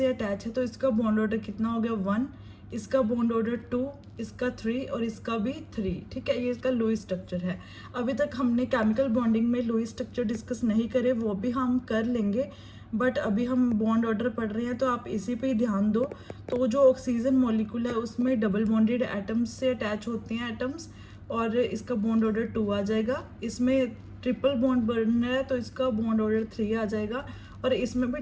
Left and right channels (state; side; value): identical; both; correlation 1.00